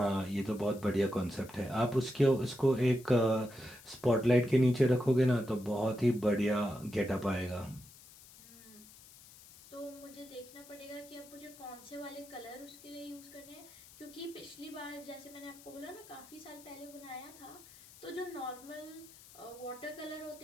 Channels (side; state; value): left; noise; hiss, 20 dB below the sound